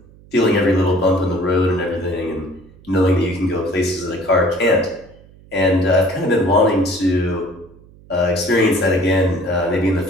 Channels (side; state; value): right; noise; hum, 25 dB below the sound